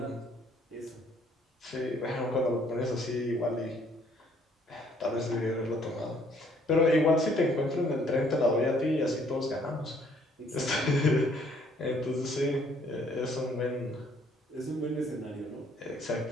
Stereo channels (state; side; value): normal; both; correlation 0.63